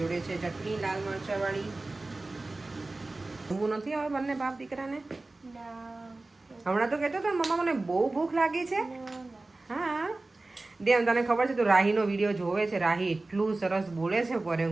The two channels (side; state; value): left; quieter; 3.1 dB